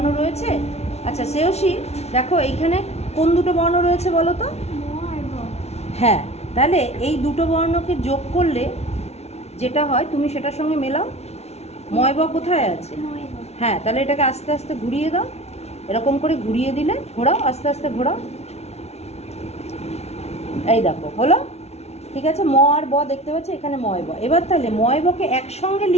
রয়েছে। আচ্ছা শ্রেয়সী দেখো এইখানে কোন দুটো বর্ণ রয়েছে বলো তো? হ্যাঁ, তাহলে এই দুটো বর্ণকে যোগ করলে যেটা হয় তুমি সেটার সঙ্গে মেলাও। ময় ব কোথায় আছে? হ্যাঁ, তাহলে এটাকে আস্তে আস্তে ঘুরিয়ে দাও, এরকম করে ঘুরিয়ে দিলে, ঘোরাও আস্তে আস্তে ঘোরাও, এই দেখো হলো। ঠিক আছে, ম আর ব দেখতে পাচ্ছি এখানে ময় ব। এবার তাহলে ময় বকে একসঙ্গে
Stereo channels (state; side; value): late; right; 0.31 ms